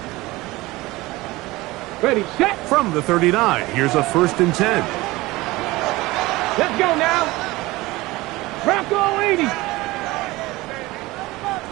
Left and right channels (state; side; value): quieter; left; 20.2 dB